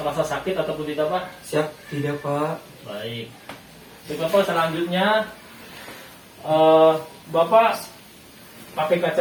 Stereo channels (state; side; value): identical; both; correlation 1.00